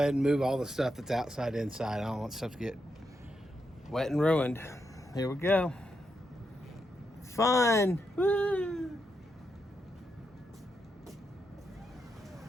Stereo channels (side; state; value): both; normal; correlation 0.83